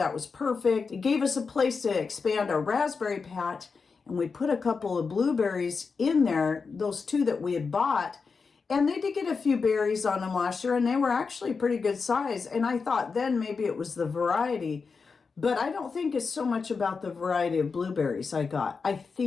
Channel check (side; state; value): right; quieter; 5.0 dB